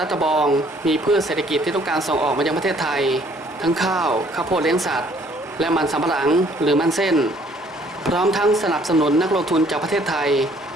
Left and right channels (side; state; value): both; normal; correlation 0.61